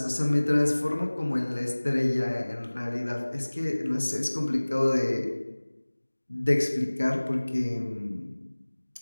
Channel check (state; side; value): inverted; both; correlation -1.00